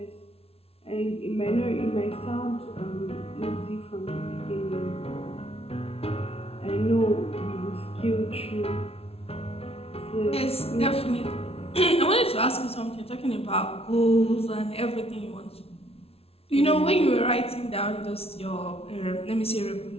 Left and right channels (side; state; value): right; late; 0.29 ms